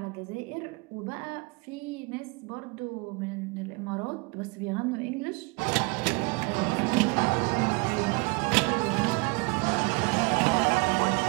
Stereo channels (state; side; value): quieter; left; 29.1 dB